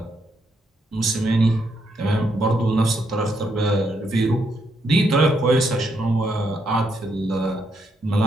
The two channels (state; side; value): normal; both; correlation 0.77